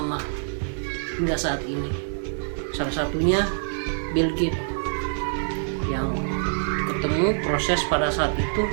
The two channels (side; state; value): left; silent; digital silence